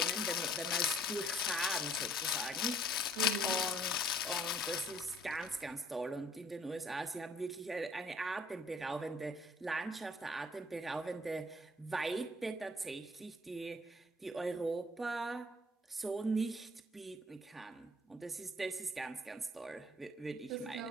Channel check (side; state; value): both; normal; correlation 0.59